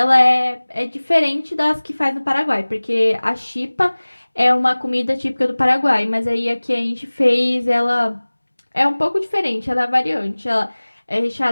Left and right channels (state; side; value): inverted; both; correlation -1.00